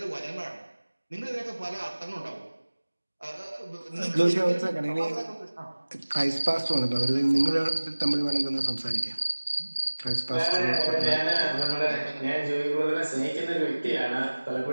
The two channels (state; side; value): inverted; both; correlation -1.00